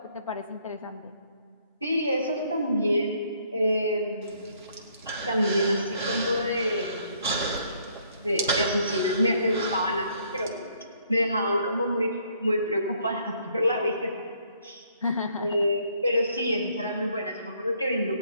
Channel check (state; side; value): inverted; both; correlation -0.67